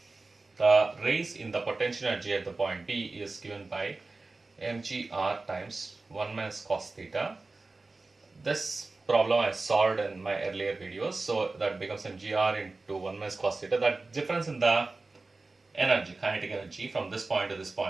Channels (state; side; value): quieter; left; 3.5 dB